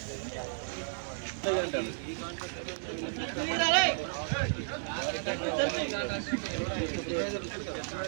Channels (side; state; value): left; silent; 56 dB below the other